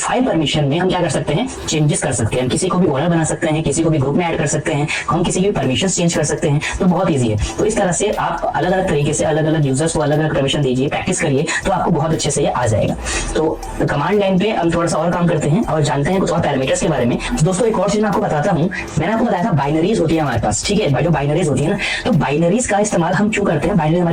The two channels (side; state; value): both; identical; correlation 1.00